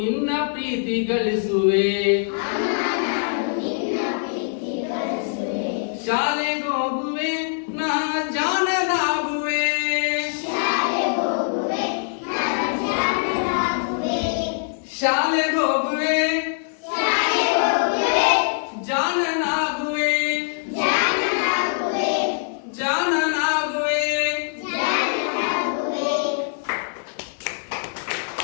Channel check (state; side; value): silent; right; digital silence